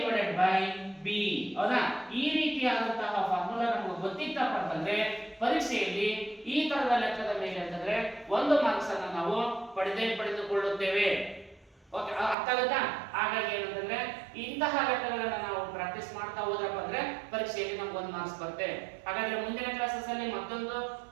ಬೈ ಬಿ ಹೌದಾ. ಈ ರೀತಿಯಾದಂತಹ ಫಾರ್ಮುಲಾ ನಮಗೆ ಗೊತ್ತಿತ್ತಪ್ಪ ಅಂತಂದ್ರೆ ಪರೀಕ್ಷೆಯಲ್ಲಿ ಈ ತರದ ಲೆಕ್ಕದ ಮೇಲೆ ಅಂತಂದ್ರೆ 1 ಮಾರ್ಕ್ಸ್ ಅನ್ನ ನಾವು ಪಡೆದುಕೊಳ್ಳುತ್ತೇವೆ. ಓಕೆ ಅರ್ಥ ಆಗುತ್ತಾ. ಹಾಗಾಗಿ ಏನಂತಂದ್ರೆ ಇಂತಹ ಲೆಕ್ಕಗಳನ್ನ ನಾವು ಪ್ರಾಕ್ಟೀಸ್ ಮಾಡ್ತಾ ಹೋದ್ರಪ್ಪ ಅಂದ್ರೆ ಪರೀಕ್ಷೆಯಲ್ಲಿ ನಮ್ಗೆ 1 ಮಾರ್ಕ್ಸ್ ಬರುತ್ತೆ. ಹಾಗಾದ್ರೆ ಮುಂದಿನ ಕ್ಲಾಸಸ್ ಅಲ್ಲಿ ಮತ್ತೊಂದು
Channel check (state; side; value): drops out; left; at 12.4 s